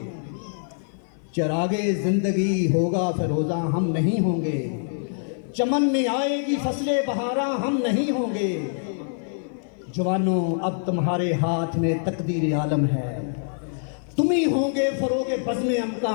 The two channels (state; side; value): silent; right; 55 dB below the other